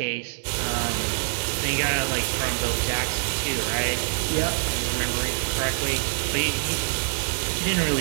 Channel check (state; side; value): silent; left; digital silence